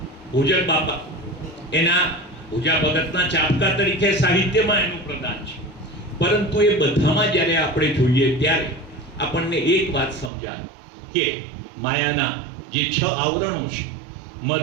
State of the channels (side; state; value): left; drops out; at 10.3 s